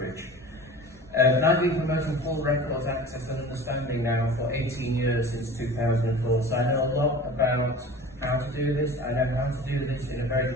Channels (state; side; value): normal; both; correlation 0.38